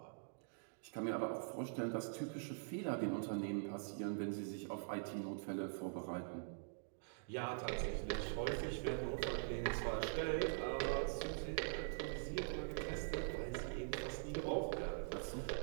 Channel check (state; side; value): silent; left; digital silence